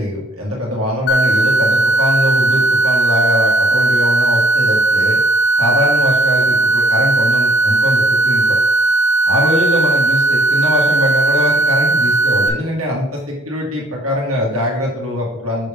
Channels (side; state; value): both; normal; correlation 0.63